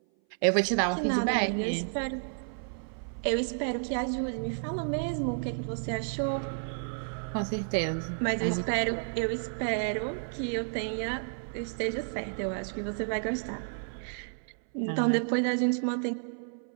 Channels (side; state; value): left; silent; 57 dB below the other